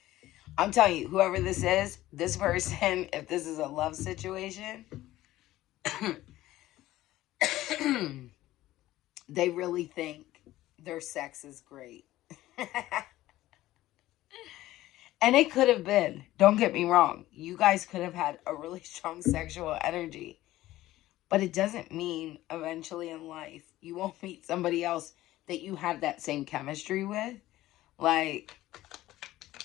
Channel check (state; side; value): quieter; right; 15.7 dB